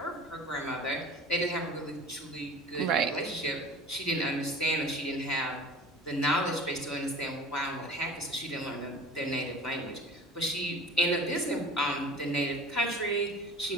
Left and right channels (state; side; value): normal; both; correlation 0.42